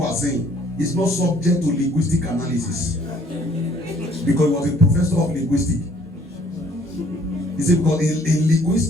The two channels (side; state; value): both; normal; correlation 0.60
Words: are saying is not subject to linguistic analysis. Because he was a professor of linguistics. He said, because in